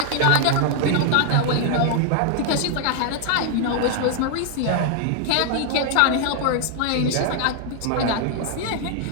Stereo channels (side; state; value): both; different; correlation 0.00